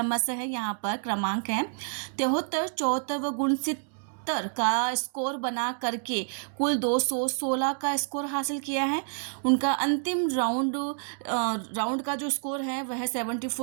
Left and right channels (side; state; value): left; silent; digital silence